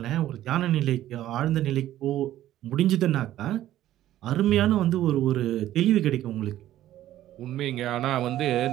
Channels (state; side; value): quieter; left; 13.3 dB